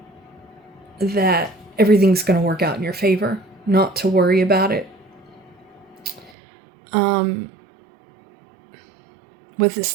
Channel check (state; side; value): drops out; left; at 6.4 s